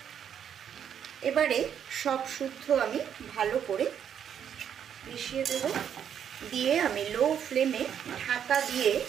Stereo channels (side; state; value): left; quieter; 8.7 dB